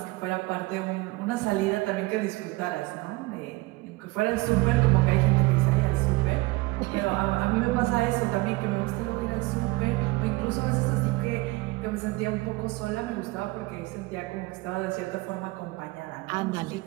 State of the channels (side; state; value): left; quieter; 22.4 dB